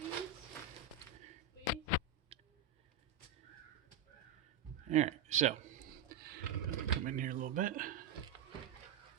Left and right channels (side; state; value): left; quieter; 6.4 dB